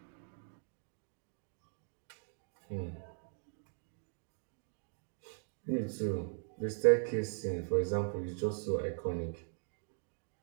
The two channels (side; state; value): left; silent; 51 dB below the other